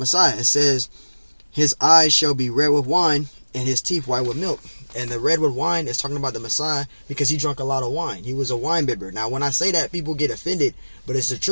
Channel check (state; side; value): inverted; both; correlation -1.00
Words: It says, his eyes shall be red with wine, and his teeth white with milk. And the red with wine is talking about the Messiah because he drank a lot of wine. He was a wine bibber. Now, when I say that, people get offended, but it's the